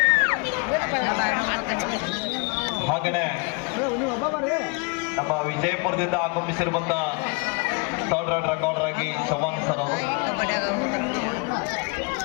ಹಾಗೆಯೇ ನಮ್ಮ ವಿಜಯಪುರದಿಂದ ಆಗಮಿಸಿರುವಂತ ಥರ್ಡ್ ರೈಟ್ ರೆಕಾರ್ಡರ್ ಆಗಿ ಚವಾನ್ ಸರ್ ಅವರು.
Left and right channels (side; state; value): right; quieter; 31.7 dB